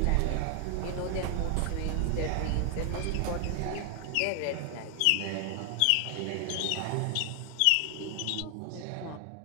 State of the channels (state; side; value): different; both; correlation 0.00